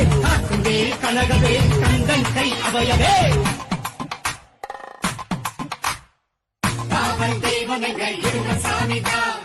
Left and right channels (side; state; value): both; identical; correlation 1.00